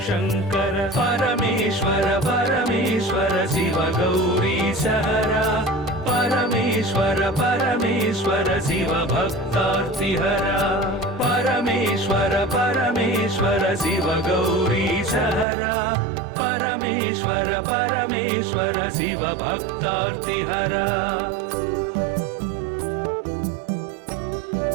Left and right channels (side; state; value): left; drops out; at 15.5 s